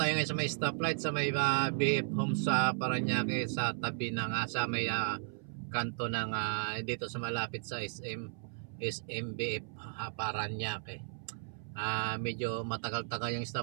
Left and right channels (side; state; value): left; silent; 55 dB below the other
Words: ngayon sa may stoplight sa may BF Homes sa Parañaque, sa tabi ng sa may kanto ng dito sa malapit sa SMBF Parañaque. Medyo matagal-tagal yung